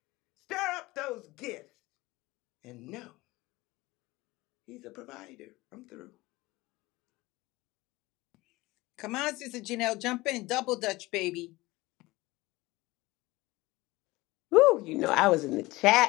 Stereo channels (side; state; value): right; quieter; 20.4 dB